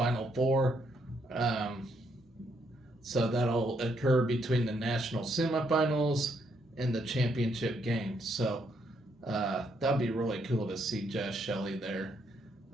Four. So that'll occur between the national semifinals and the championship game. So that'd be really cool to see Jaz Shelly there,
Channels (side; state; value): both; normal; correlation 0.74